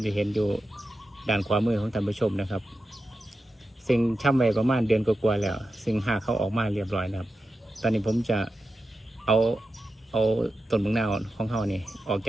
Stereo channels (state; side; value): normal; both; correlation 0.91